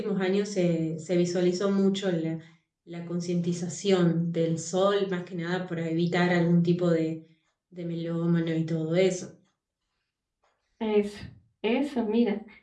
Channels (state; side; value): identical; both; correlation 1.00